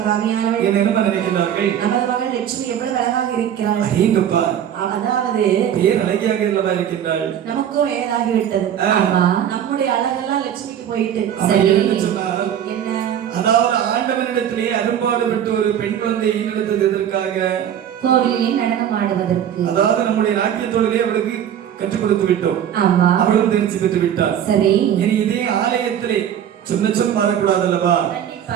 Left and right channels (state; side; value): quieter; left; 9.7 dB